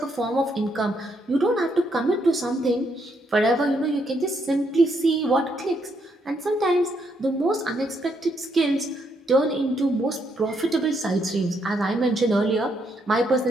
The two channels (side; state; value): both; normal; correlation 0.75